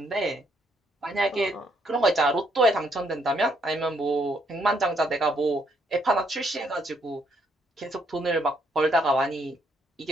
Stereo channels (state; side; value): normal; both; correlation 0.71